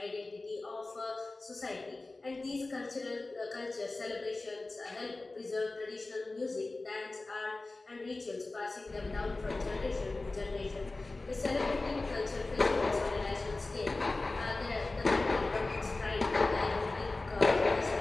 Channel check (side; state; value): right; quieter; 3.2 dB